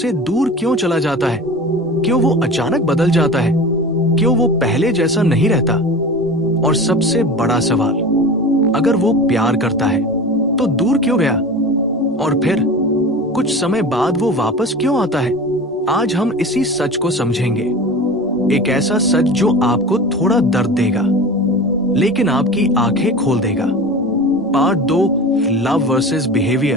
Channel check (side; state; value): both; normal; correlation 0.33